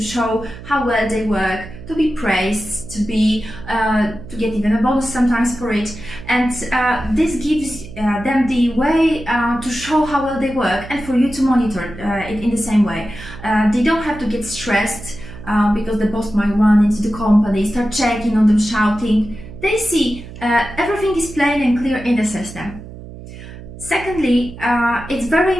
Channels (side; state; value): right; noise; hum, 14 dB below the sound